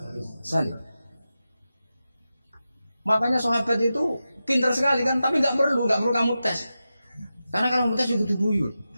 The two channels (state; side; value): inverted; both; correlation -0.92